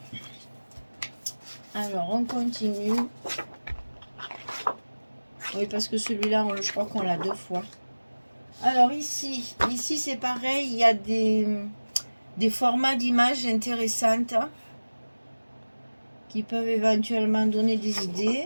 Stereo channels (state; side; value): inverted; both; correlation -1.00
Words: Alors, on continue. Oui, parce que celui-là, je crois qu'on l'a deux fois. Alors ici c'est pareil, il y a des formats d'images intéressantes qui peuvent éventuellement donner des